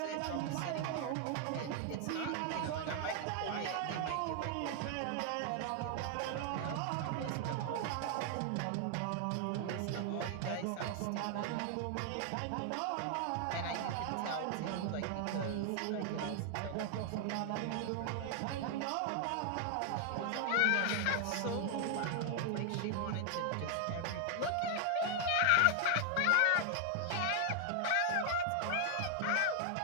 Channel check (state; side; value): different; both; correlation 0.00